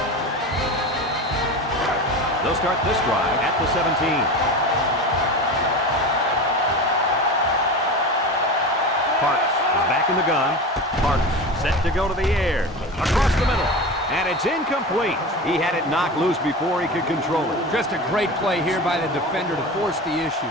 They'll start this drive at the 17. Parks is back in the gun. Parks set to go to the air. Across the middle. And it's incomplete. He had it knocked loose before he could control it. Just a great play here by the defender to force the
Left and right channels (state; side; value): normal; both; correlation 0.28